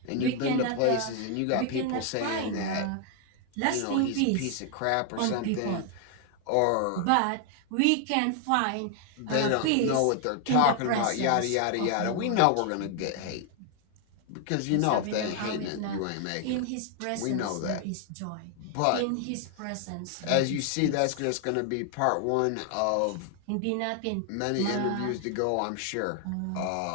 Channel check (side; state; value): both; different; correlation 0.00